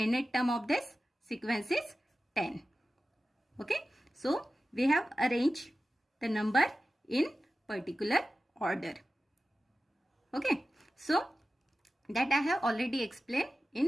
term of this sequence is 10. Okay, so we have arranged the number in particular order. Okay, so that I have already explained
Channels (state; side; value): normal; both; correlation 0.95